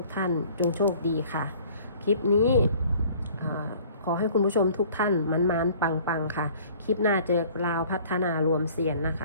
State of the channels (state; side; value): inverted; both; correlation -0.52